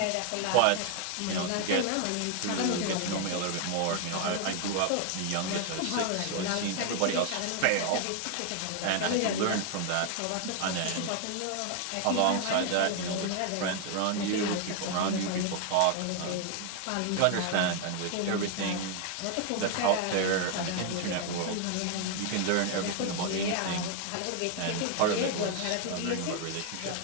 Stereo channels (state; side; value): different; both; correlation 0.00